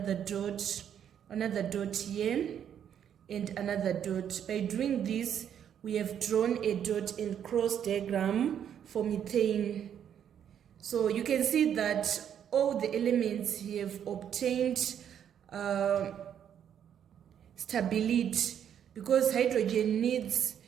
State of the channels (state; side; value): quieter; left; 9.1 dB